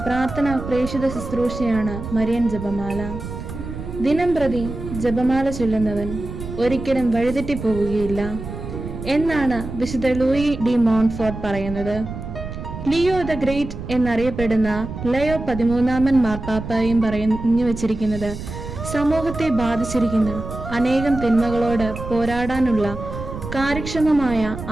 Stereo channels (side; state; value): right; noise; rumble, 9 dB below the sound